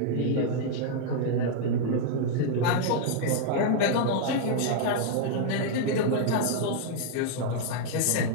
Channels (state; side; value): different; both; correlation -0.01